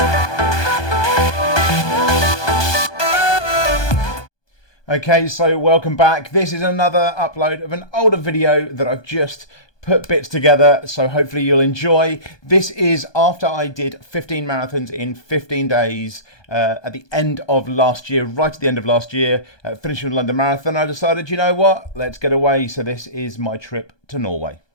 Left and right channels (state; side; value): late; right; 1.2 ms